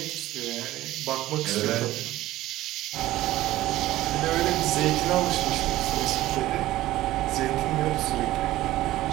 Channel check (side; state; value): left; quieter; 15.8 dB